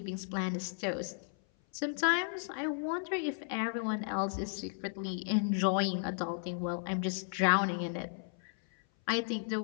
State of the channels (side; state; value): right; silent; 55 dB below the other